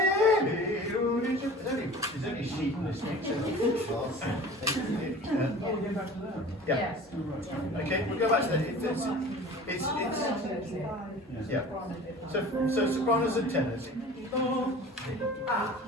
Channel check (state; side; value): normal; both; correlation 0.41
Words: only a sheet in this thing. Yeah. Yes. Okay, we'll go back to that. Yeah. So sopranos and tenors.